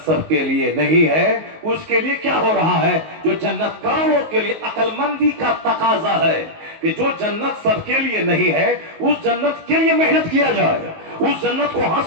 سب کے لیے نہیں ہے اس کے لیے کیا ہو رہا ہے؟ جو جنت کروڑوں کے لیے عقل مندی کا تقاضا ہے کہ جو جنت سب کے لیے نہیں ہے اس جنت کے لیے محنت کیا جائے، اس جنت کو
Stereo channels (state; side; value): late; left; 19 ms